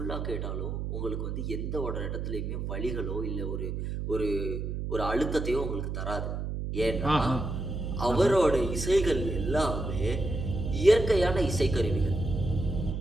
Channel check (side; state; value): right; noise; hum, 3 dB below the sound